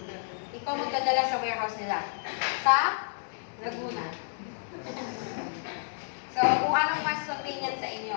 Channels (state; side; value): silent; right; digital silence